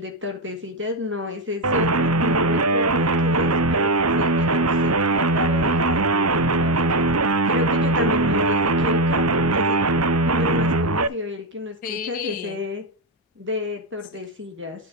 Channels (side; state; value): both; normal; correlation 0.07